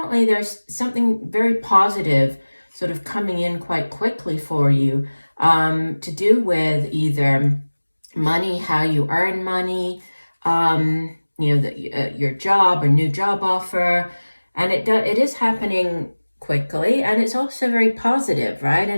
there's something very positive sort of coming in quite quickly for you to do with either money, how you earn money, your job or new job offer. And it is happening quickly, and it's also very positive, right?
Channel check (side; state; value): both; inverted; correlation -1.00